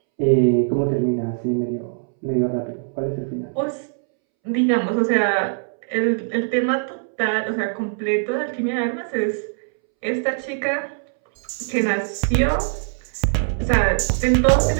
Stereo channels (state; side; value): silent; left; 64 dB below the other